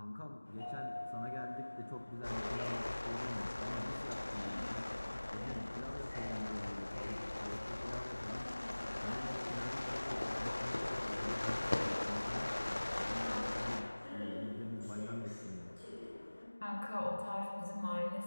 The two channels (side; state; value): both; inverted; correlation -1.00